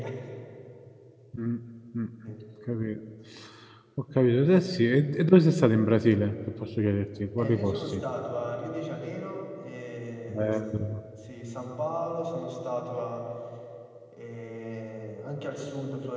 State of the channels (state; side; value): identical; both; correlation 1.00